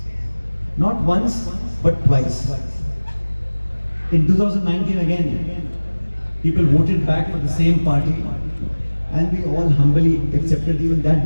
Not once, but twice. In 2019 again, people voted back for the same party, and we all humbly accepted even that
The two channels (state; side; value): inverted; both; correlation -1.00